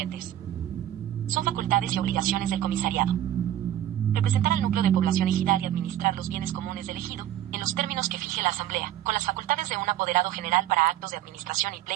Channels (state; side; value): quieter; left; 12.4 dB